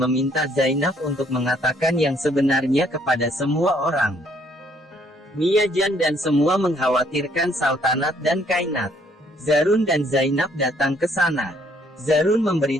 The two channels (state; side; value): normal; both; correlation 0.65